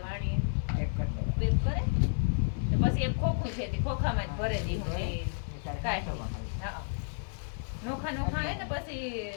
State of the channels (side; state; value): right; silent; 57 dB below the other